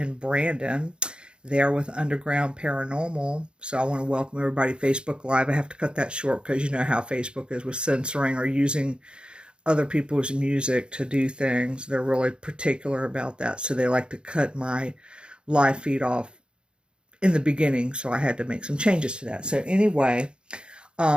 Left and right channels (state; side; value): late; left; 0.053 ms